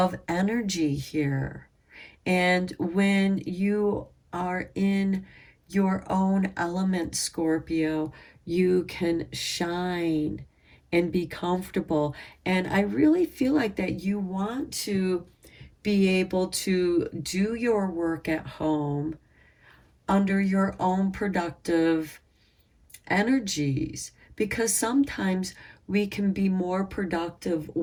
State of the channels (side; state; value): both; identical; correlation 1.00